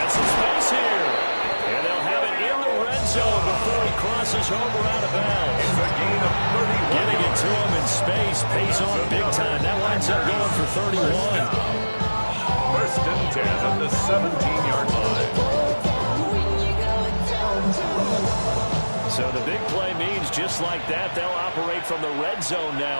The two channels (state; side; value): inverted; both; correlation -1.00